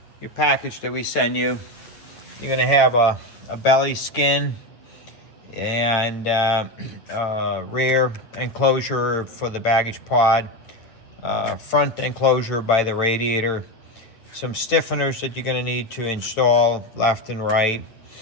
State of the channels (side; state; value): right; late; 9.1 ms